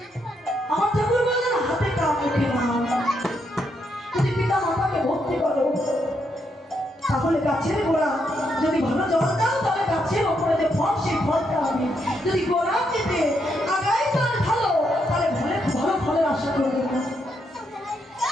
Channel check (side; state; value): both; normal; correlation 0.78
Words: আমার ঠাকুর বললেন হাতে কাম মুখে নাম। যদি পিতা মাতাকে ভক্তি করো তাহলে গাছের গোড়া যদি ভালো জল দাও, তাহলে গাছের ওপরে যে ফল সেই ফলটা হবে। যদি গোড়া কেটে আগায় তার ভালো, তাহলে ভালো ফলের আশা করবে না।